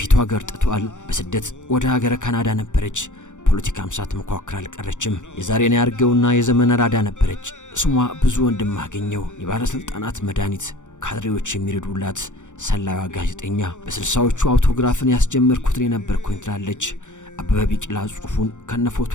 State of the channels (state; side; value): late; right; 0.85 ms